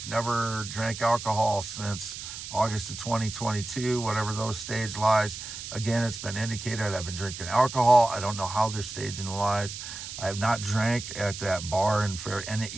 never drank alcohol since August of 2022, whatever those stage lies. Again, it's been indicated I've been drinking alcohol. I don't know how they're staging the lies. I have not drank at that bar in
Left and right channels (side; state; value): right; noise; hiss, 9 dB below the sound